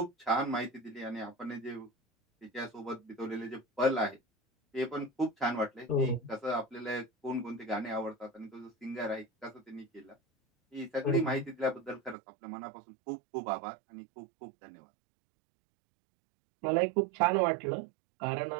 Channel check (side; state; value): left; drops out; at 12.2 s